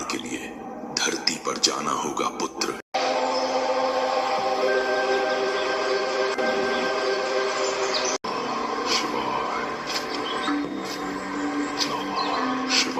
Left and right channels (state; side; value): identical; both; correlation 1.00